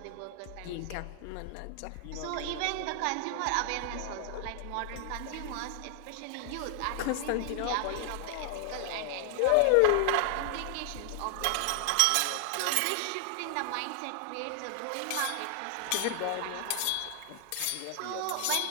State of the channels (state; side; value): different; both; correlation 0.00